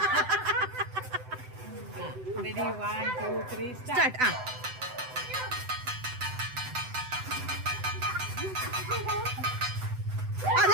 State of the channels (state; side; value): late; left; 7.9 ms